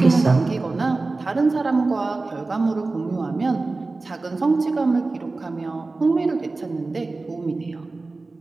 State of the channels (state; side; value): quieter; left; 3.5 dB